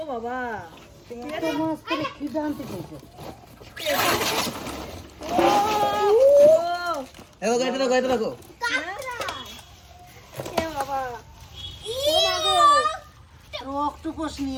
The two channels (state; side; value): identical; both; correlation 1.00